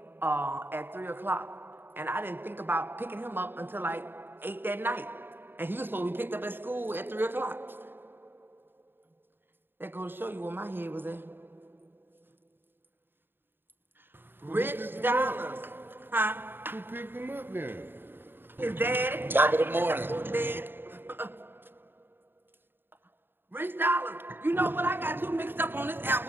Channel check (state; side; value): late; left; 0.099 ms